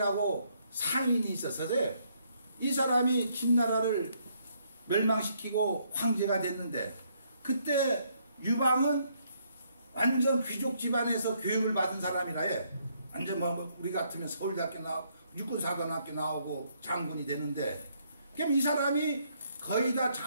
상인이 있었어요. 이 사람이 진나라를 멸망시키고 황제가 됐는데, 그때 유방은 완전 귀족 집안에서 교육을 받은 사람이라, 예. 완전 뭐 우리 같으면 서울대학교 나오고 육군사관학교 나오고 장군이 되는데, 그럼 이 사람이 거의 다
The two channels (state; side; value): inverted; both; correlation -0.71